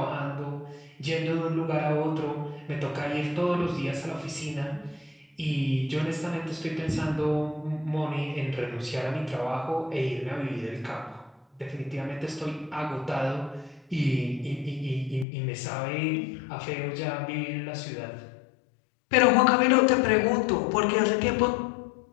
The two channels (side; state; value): right; drops out; at 15.2 s